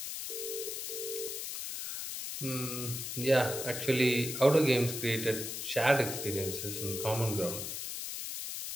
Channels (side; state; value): left; noise; hiss, 5 dB below the sound